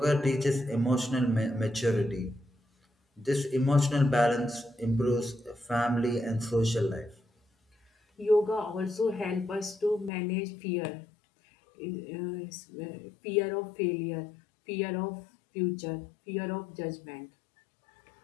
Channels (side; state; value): right; drops out; at 10.1 s